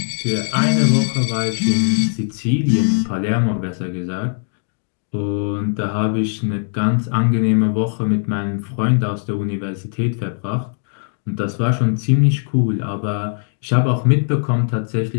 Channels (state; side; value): silent; right; 66 dB below the other